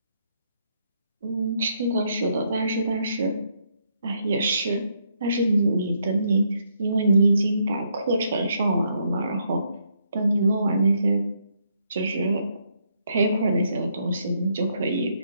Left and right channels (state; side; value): inverted; both; correlation -0.74